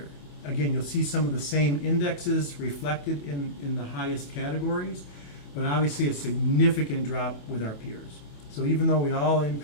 Again, you'll see some of the same indexes reflected in the highest categories, but obviously a significant drop with our peers. So even though we all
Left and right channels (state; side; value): late; right; 28 ms